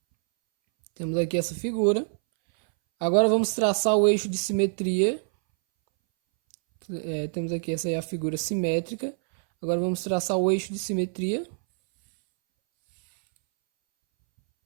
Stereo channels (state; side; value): silent; left; 61 dB below the other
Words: Temos aqui essa figura. Agora vamos traçar o eixo de simetria. Temos aqui essa é a figura simétrica. Agora vamos traçar o eixo de simetria.